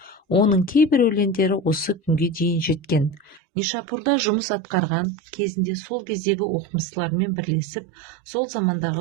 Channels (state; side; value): drops out; left; at 3.4 s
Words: Оның кейбір өлеңдері осы күнге дейін жеткен. Нишапурда жұмыс атқарған кезінде сол кездегі оқымыстылармен бірлесіп, сол